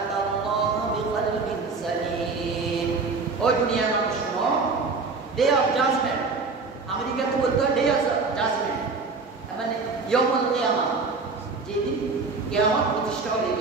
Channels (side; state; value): left; quieter; 4.3 dB